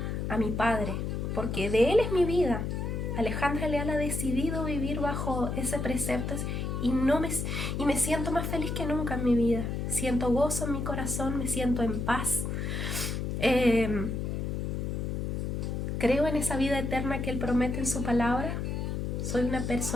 a mi Padre, porque de Él es mi vida, Alejandra Leal ha decidido vivir bajo ese precepto y me siento más feliz que nunca en mi vida. Siento gozo en mi corazón, me siento en paz. Creo en esa vida eterna que Él promete en su palabra. Soy una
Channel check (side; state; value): left; noise; hum, 2 dB below the sound